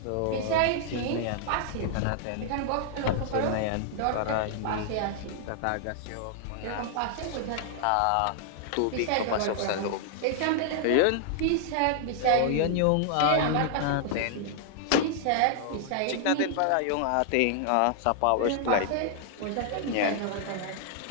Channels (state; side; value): different; both; correlation -0.01